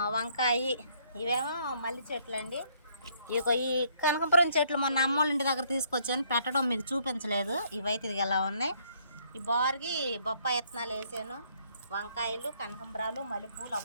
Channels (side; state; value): both; inverted; correlation -0.67